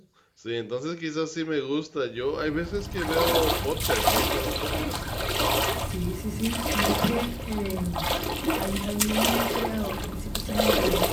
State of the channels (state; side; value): identical; both; correlation 1.00